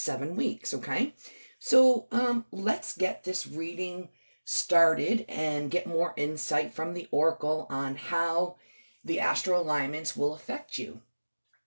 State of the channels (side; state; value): both; inverted; correlation -1.00